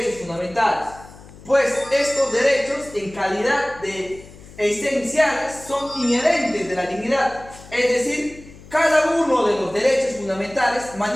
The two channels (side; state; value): left; noise; hum, 20 dB below the sound